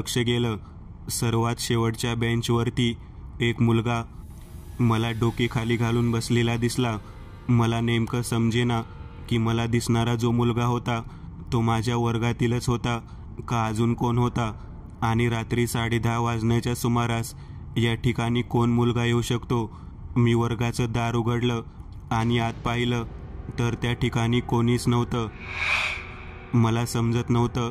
गेलं. सर्वात शेवटच्या बेंचवरती एक मुलगा मला डोके खाली घालून बसलेला दिसला. मला नेमकं समजेना की मला दिसणारा जो मुलगा होता तो माझ्या वर्गातीलच होता का अजून कोण होता, आणि रात्री 10:30 वाजण्याच्या सुमारास या ठिकाणी कोण मुलगा येऊ शकतो. मी वर्गाचं दार उघडलं आणि आत पाहिलं तर त्या ठिकाणी कोणीच नव्हतं. मला समजत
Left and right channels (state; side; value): identical; both; correlation 1.00